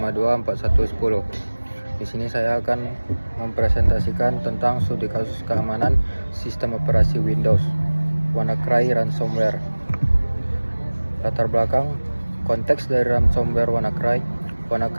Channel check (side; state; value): both; inverted; correlation -1.00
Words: Di sini saya akan mempresentasikan tentang studi kasus keamanan sistem operasi Windows, WannaCry ransomware. Latar belakang konteks dari ransomware WannaCry.